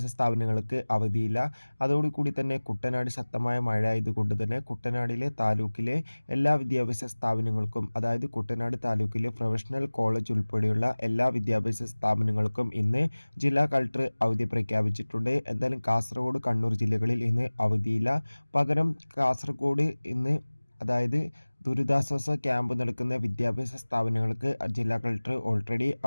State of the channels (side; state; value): both; inverted; correlation -1.00